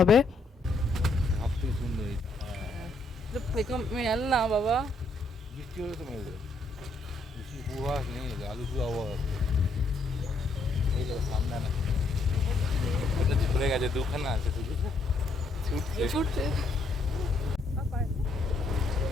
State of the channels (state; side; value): quieter; right; 3.1 dB